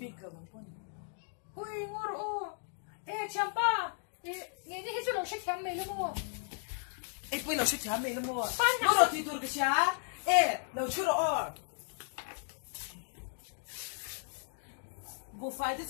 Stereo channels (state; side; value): silent; right; 54 dB below the other